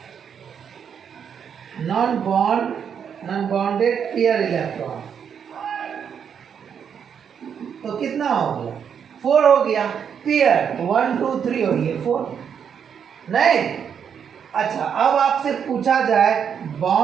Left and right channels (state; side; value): quieter; left; 7.6 dB